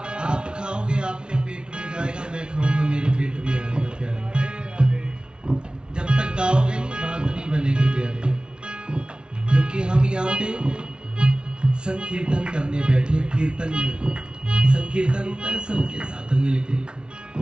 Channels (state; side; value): late; left; 0.055 ms